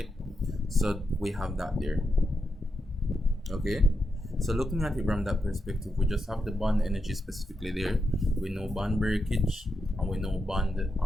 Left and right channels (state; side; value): normal; both; correlation 0.85